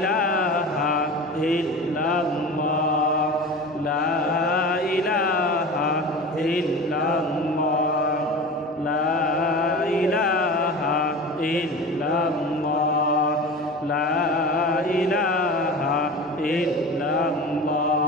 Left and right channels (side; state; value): both; normal; correlation 0.33